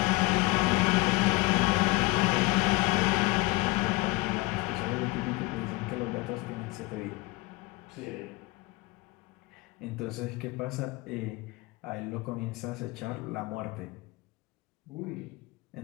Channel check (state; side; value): quieter; right; 23.3 dB